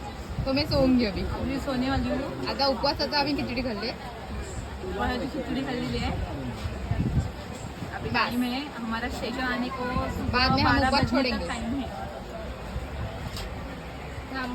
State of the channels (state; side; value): identical; both; correlation 1.00